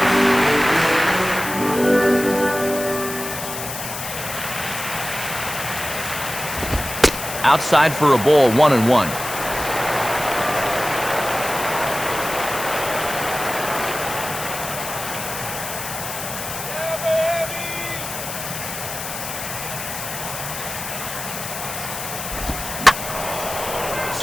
Outside for a ball, 1-1.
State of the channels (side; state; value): left; noise; hiss, 7 dB below the sound